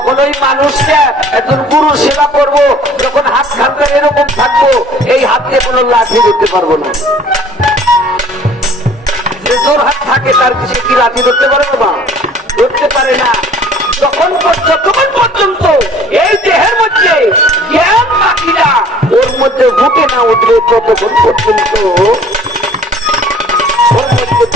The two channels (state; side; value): normal; both; correlation 0.52